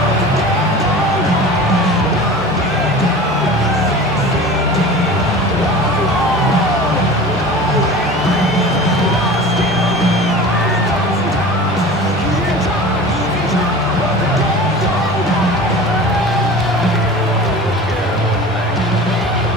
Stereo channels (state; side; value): normal; both; correlation 0.37